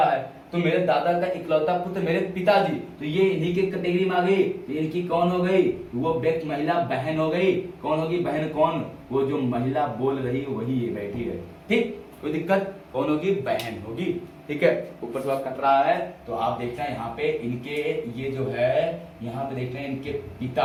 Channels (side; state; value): both; identical; correlation 1.00